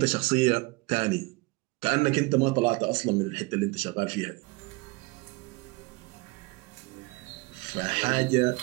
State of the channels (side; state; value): left; quieter; 24.8 dB